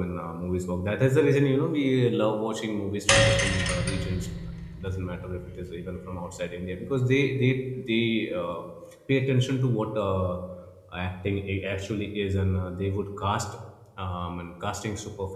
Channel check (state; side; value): identical; both; correlation 1.00